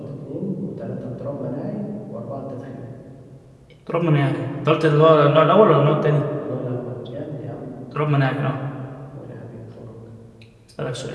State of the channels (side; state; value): both; identical; correlation 1.00